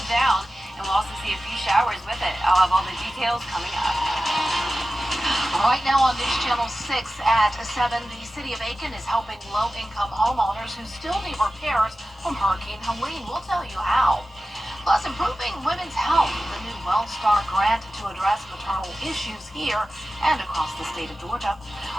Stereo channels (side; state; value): both; normal; correlation 0.94